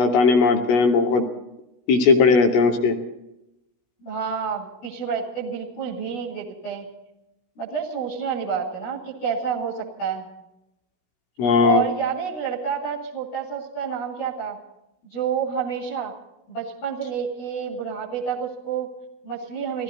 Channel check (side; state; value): right; late; 16 ms